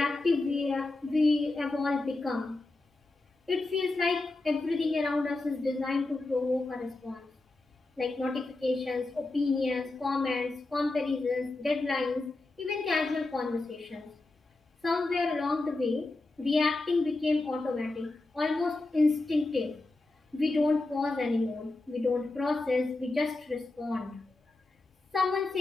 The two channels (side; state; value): right; quieter; 3.1 dB